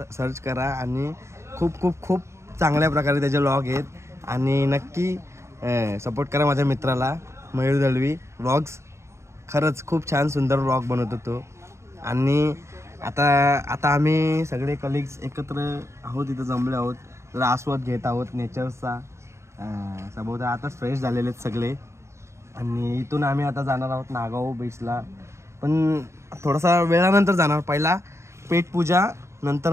करा आणि खूप खूप खूप चांगल्या प्रकारे त्याचे व्लॉग आहेत. आणि नक्की सपोर्ट करा माझ्या मित्राला मयूर दलवी व्लॉग्स. खरंच खूप छान सुंदर व्लॉग बनवतो तो. आणि आता आम्ही सगळे कलिग्स एकत्र आहोत, इथं जमले आहोत, जरा आस्वाद घेत आहोत नेचरचा. सभोवता आताच फ्रेश झालेले आहेत सगळे. आणि इथून आम्ही आता जाणार आहोत नागाव बीचला, पण थोडासा वेळानंतर जाणार. पहिला पेटपूजा,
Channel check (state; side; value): late; left; 0.13 ms